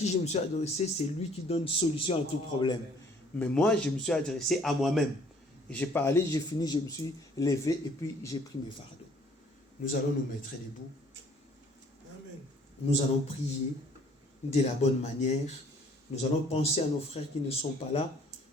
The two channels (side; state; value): both; normal; correlation 0.58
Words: je me suis adressé, c'est lui qui donne solution à tout problème. Mais moi, je me suis adressé à moi-même. J'ai parlé, j'ai fini, je me suis levé et puis j'ai pris mes fardeaux. Nous allons nous mettre debout. Amen. Nous allons prier de la bonne manière. Nous allons penser à nos frères qui ne sont pas là.